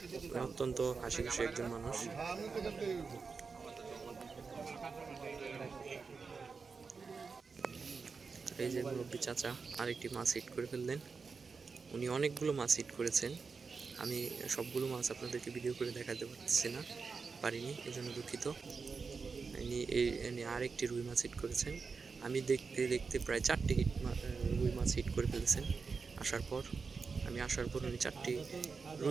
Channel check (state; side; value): quieter; left; 5.0 dB